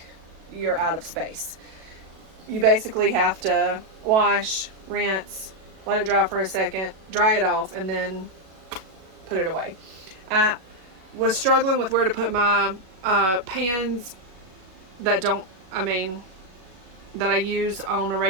you're out of space. You basically have to wash, rinse, let it dry for a second, dry it off, and then put it away. I was struggling with where to put my pans that I use on a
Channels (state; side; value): late; left; 37 ms